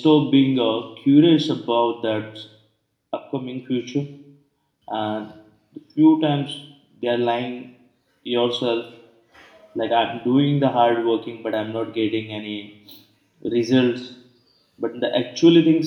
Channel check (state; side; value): identical; both; correlation 1.00